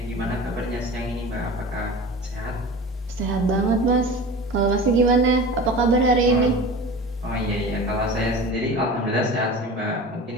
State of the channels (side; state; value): both; normal; correlation 0.35